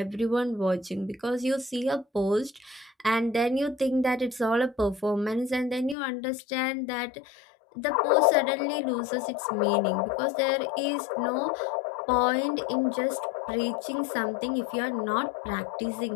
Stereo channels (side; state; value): right; drops out; at 6.0 s